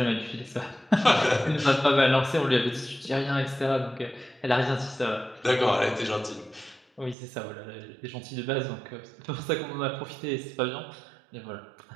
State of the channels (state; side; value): drops out; left; at 7.2 s